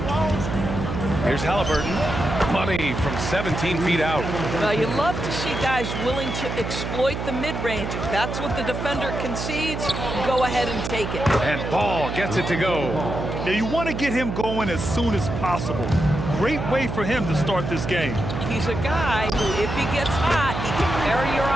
Here's Halliburton. Money from 17 feet out. Well, you love to see guys willing to exploit the mid-range. If that's what the defender concedes, go ahead and take it. And Ball gets it to go. Now, you want to get him going as soon as possible. Great way for him to start this game. He's a guy who, if he gets hot, he can carry your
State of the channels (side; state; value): right; noise; hum, 4 dB below the sound